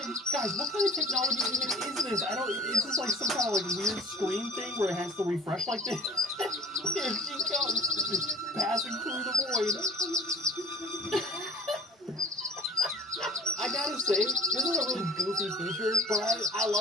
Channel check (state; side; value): normal; both; correlation 0.48